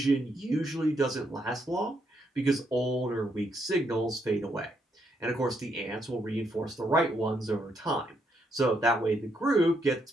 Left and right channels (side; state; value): both; normal; correlation 0.76